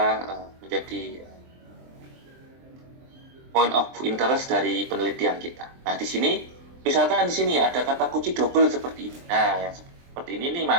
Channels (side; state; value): left; late; 23 ms